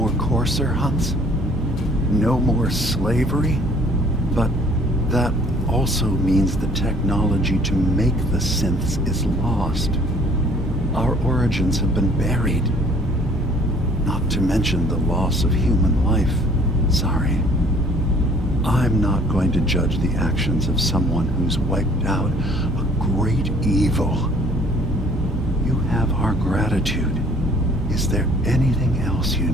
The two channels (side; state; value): both; normal; correlation 0.56